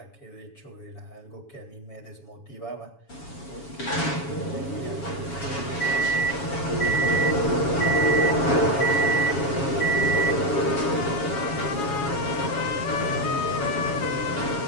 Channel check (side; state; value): right; late; 7.2 ms